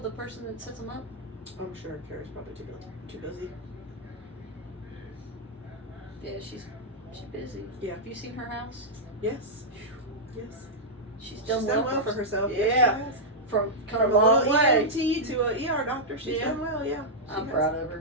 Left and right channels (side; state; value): both; normal; correlation -0.07